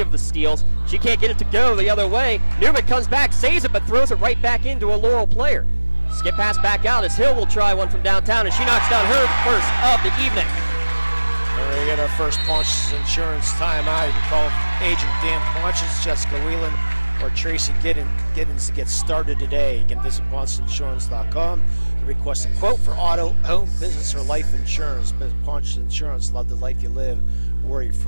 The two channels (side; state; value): both; inverted; correlation -1.00